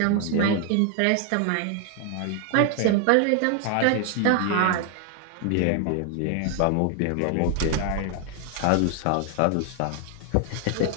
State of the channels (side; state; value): both; different; correlation 0.00